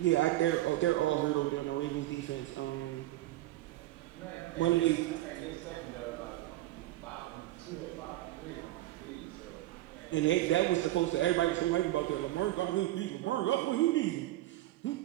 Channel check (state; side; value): quieter; left; 16.1 dB